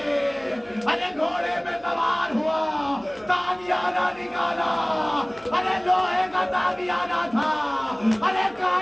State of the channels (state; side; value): noise; left; hum, 30 dB below the sound